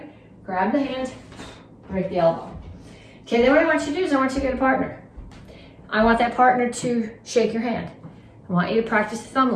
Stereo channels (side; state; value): both; identical; correlation 1.00